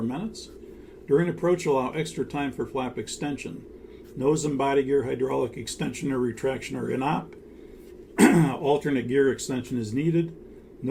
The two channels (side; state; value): both; identical; correlation 1.00